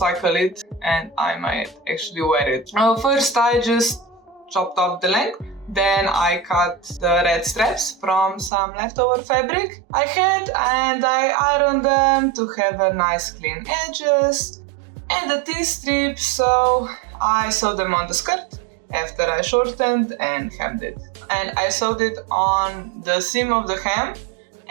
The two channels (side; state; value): left; drops out; at 8.5 s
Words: it, and I might actually wear it. First I just chopped off the length. Then I cut the red straps from some leftover fabric I had, and I ironed them to have a nice clean edges. And the T-strips, so I sewed them on the skirt after I shortened and hemmed it. And I sewed it on the seam of the hem,